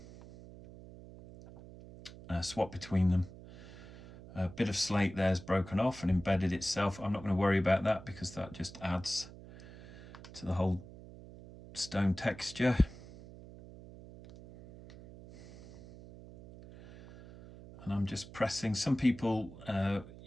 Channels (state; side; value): noise; right; hum, 17 dB below the sound